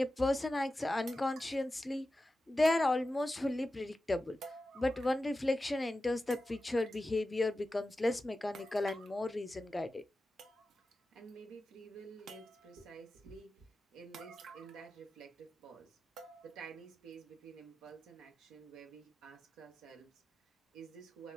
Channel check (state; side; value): normal; both; correlation 0.93